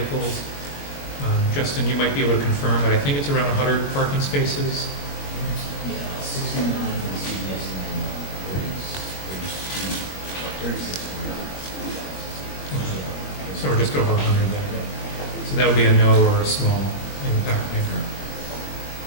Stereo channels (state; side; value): late; right; 21 ms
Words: Justin, you might be able to confirm, but I think it's around 100 parking spaces. Yeah, 69 for the CVS and then 36 for So we're just over 100 there. So that would be a no or a small impact maker.